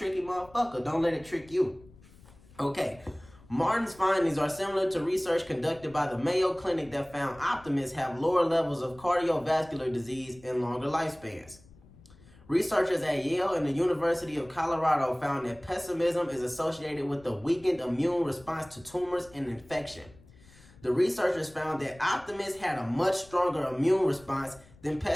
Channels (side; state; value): left; noise; rumble, 24 dB below the sound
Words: motherfucker. Don't let it trick you. Okay. Martin's findings are similar to research conducted by the Mayo Clinic that found optimists have lower levels of cardiovascular disease and longer lifespans. Researchers at Yale and the University of Colorado found that pessimism is associated with a weakened immune response to tumors and infection. The researchers found that optimists had a much stronger immune response than